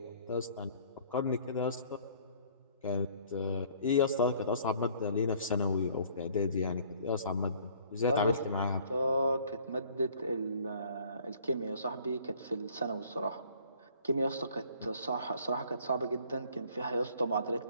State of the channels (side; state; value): both; inverted; correlation -0.55